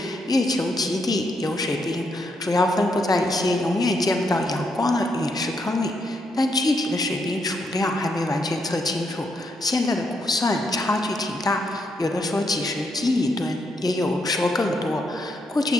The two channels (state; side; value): normal; both; correlation 0.78